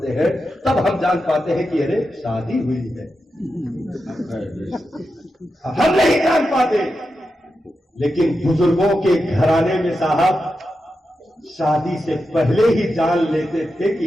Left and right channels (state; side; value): normal; both; correlation 0.89